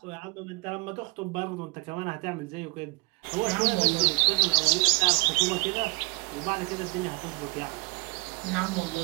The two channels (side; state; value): left; quieter; 29.0 dB